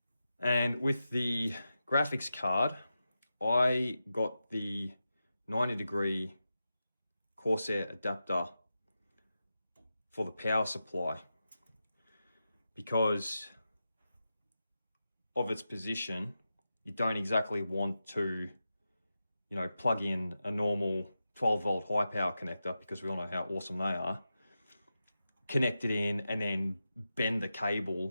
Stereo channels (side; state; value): both; inverted; correlation -0.91